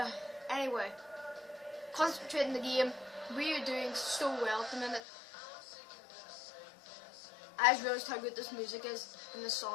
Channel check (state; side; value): drops out; right; at 5.0 s